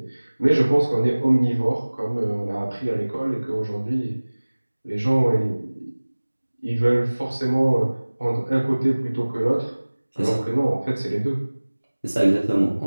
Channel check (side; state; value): both; inverted; correlation -1.00